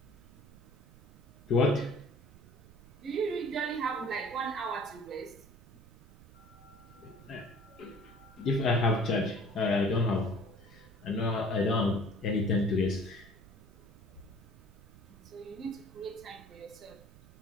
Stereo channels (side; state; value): right; noise; rumble, 22 dB below the sound